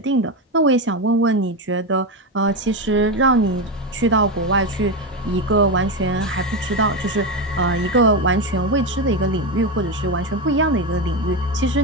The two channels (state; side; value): normal; both; correlation 0.13